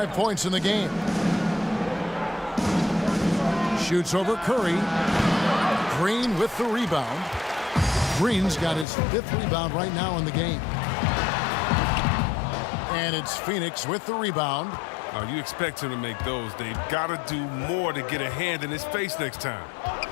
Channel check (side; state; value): right; drops out; at 8.8 s